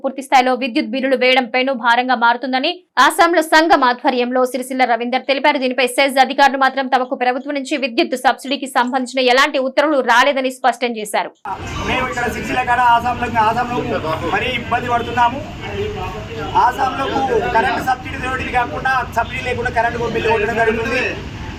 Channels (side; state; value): both; identical; correlation 1.00